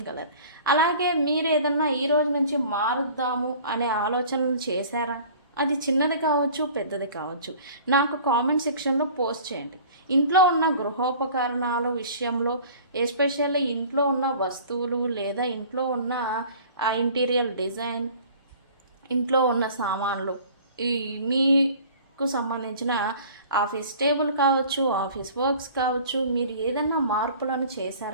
కలర్. అలాగే మీరు ఏదన్నా ఈరోజు నుంచి మారుద్దాము అనే ఆలోచనలు చేశారా? అది చిన్నది కావచ్చు, పెద్దది కావచ్చు, నాకు కామెంట్ సెక్షన్లో పోస్ట్ చేయండి. ఇంట్లో ఉన్న గృహోపకరణాల విషయంలో, ఎస్పెషల్లీ ఇంట్లో ఉన్న వస్తువులు లేదా ఇంట్లో ఉన్న ఆ ఇంటీరియర్ డిజైన్, ఇంట్లో ఉన్న సామాన్లు, ఈ మీకు సంబంధించిన ఆఫీస్ టేబుల్ కావచ్చు, ఆఫీస్ వర్క్స్ కావచ్చు, మీరు ఏదైనా మార్పులను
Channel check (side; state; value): both; inverted; correlation -0.46